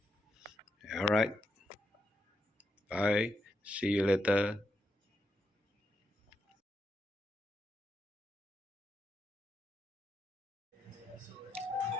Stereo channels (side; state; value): both; normal; correlation 0.83